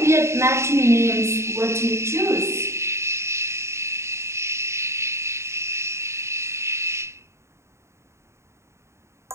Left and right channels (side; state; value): left; late; 0.13 ms